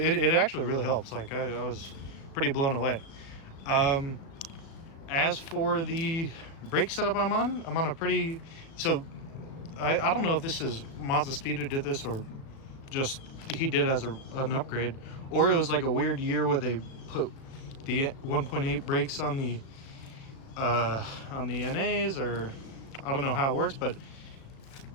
actually really helps. Like I was pretty blown away. As for the brake setup I'm on a pretty, so I don't know if this is Mazda Speed who did this, or just he did as an upgrade, or it was like a weird year where they put the 1.8 brakes on the NAs, or I don't know how it works, but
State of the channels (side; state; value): right; late; 36 ms